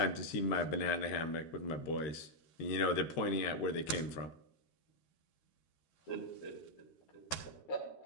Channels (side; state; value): right; late; 13 ms